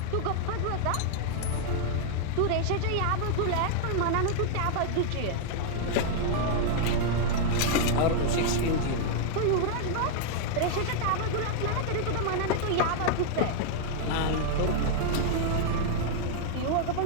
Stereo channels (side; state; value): both; different; correlation -0.01